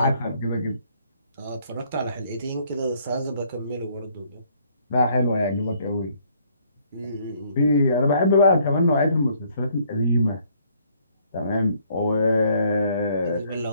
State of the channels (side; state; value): both; inverted; correlation -0.64